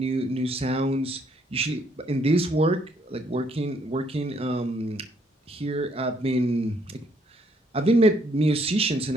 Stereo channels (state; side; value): normal; both; correlation 0.68